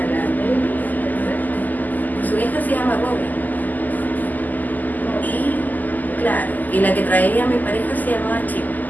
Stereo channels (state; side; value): late; right; 0.083 ms